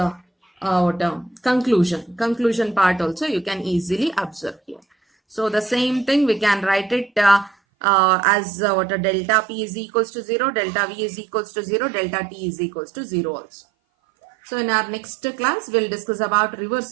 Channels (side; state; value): left; drops out; at 7.6 s